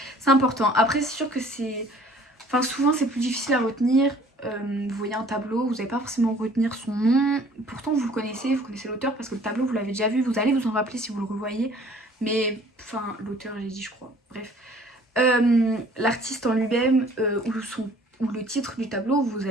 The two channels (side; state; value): both; normal; correlation 0.53